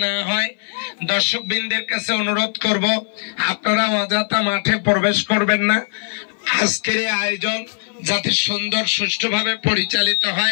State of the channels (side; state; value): right; silent; 57 dB below the other